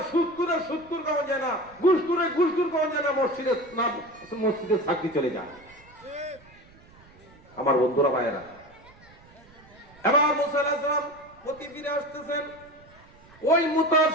সুৎকুরের সুৎকুর কখন যায় না, ঘুষকুরের ঘুষকুর কখন যায় না, মসজিদে চাকরি চলে যায়। আমার বন্ধুরা ভাইয়েরা, এবার মুসা আলাইহিস সালাম প্রতি ফিরে আসতেছেন, ওই মুসার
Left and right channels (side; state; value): right; noise; rumble, 25 dB below the sound